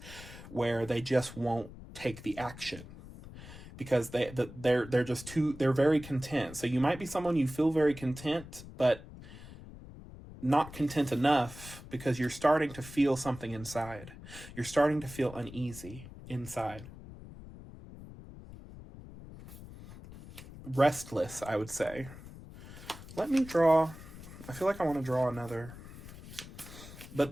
where they just won't take the action because they're just they're very content. So you might be someone you feel very content, but not content enough because you're starting to feel something inside. You're starting to feel uneasy inside. Restless, I would say. Let me draw. I feel like I want to draw another.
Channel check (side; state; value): left; noise; rumble, 15 dB below the sound